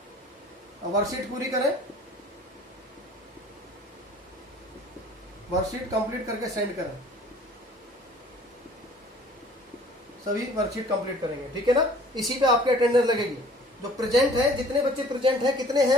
वर्कशीट पूरी करें, वर्कशीट कंप्लीट करके सेंड करें। सभी वर्कशीट कंप्लीट करेंगे, ठीक है ना। इसी पे आपके अटेंडेंस लगेगी। जो प्रेजेंट है, जितने बच्चे प्रेजेंट हैं, कितने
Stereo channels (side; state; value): both; normal; correlation 0.51